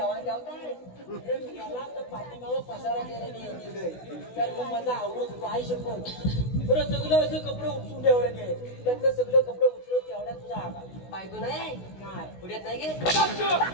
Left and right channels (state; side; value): late; right; 16 ms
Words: जावताय? याला तर पाठीमागं पसारा करायला गेलोय. तर मग माझा आवडत होतो. आई शपथ बरं सगळं असं कपडे उपसून ठेवायचे आहे. त्यातलं सगळं कपडे उचलून तेवढ्या तुझा आकार बायको नाही नाही. पुढ्यात नाही गे.